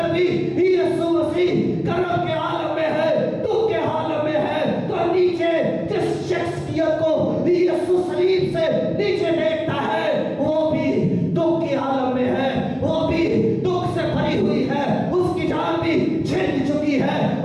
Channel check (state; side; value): identical; both; correlation 1.00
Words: भी यीशु मसीह करब के आलम में है, दुख के आलम में है। तो नीचे जिस शख्सियत को यीशु सलीब से नीचे देखता है वो भी दुख के आलम में है, वो भी दुख से भरी हुई है, उसकी जान भी छिन चुकी है,